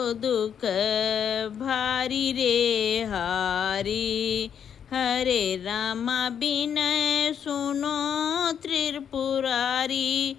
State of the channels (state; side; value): quieter; right; 8.2 dB